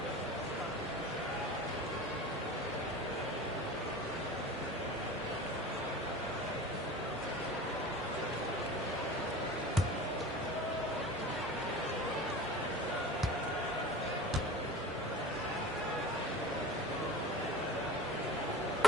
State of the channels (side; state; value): both; normal; correlation 0.38